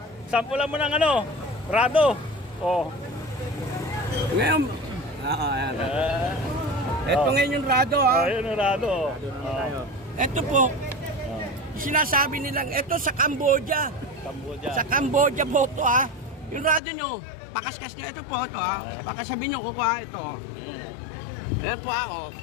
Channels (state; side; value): drops out; right; at 16.8 s